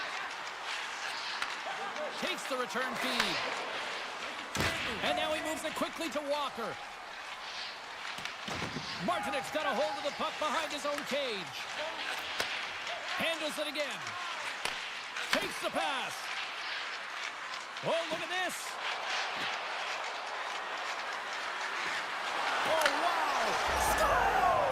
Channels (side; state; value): both; identical; correlation 1.00